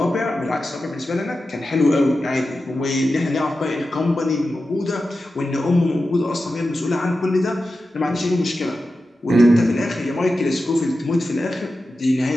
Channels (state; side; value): normal; both; correlation 0.92